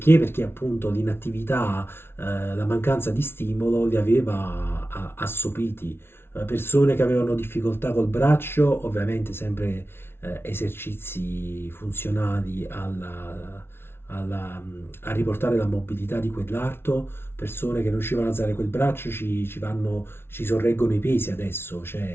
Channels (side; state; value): right; late; 0.12 ms